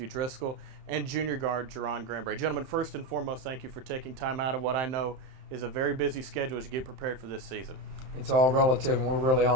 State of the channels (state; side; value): late; left; 31 ms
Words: Driscoll, and junior guard, Jerron Granberry. Gentlemen, first and foremost, thank you for taking time out of what I know is a very busy schedule as you get prepared for this season. It's all relative, and we're really